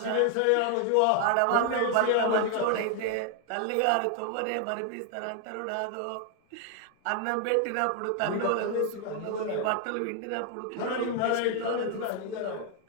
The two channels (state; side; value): different; both; correlation 0.00